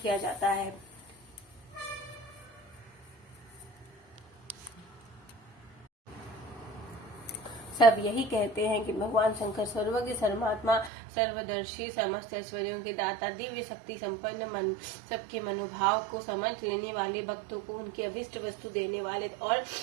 जाता है। सब यही कहते हैं कि भगवान शंकर सर्वज्ञ, सर्वात्मा, सर्वदर्शी, समस्त ऐश्वर्यों के दाता, दिव्य शक्ति संपन्न, मन सबके मनोभाव को समझ लेने वाले, भक्तों को उनकी अभिष्ट वस्तु देने वाले और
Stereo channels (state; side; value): drops out; left; at 10.9 s